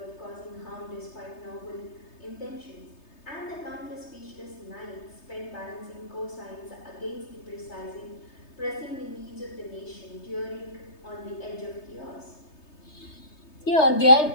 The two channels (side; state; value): right; late; 3.3 ms